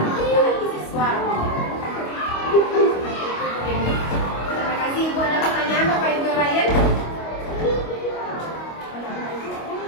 membuka hati siswa. Terima kasih Ibu. Ada pertanyaan Bapak Ibu lain?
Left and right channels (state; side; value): late; right; 25 ms